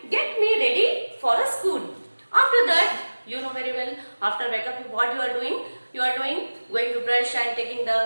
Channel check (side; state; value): both; inverted; correlation -1.00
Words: get me ready for a school. After that, you know very well, after wake up what you are doing? You are going to brush and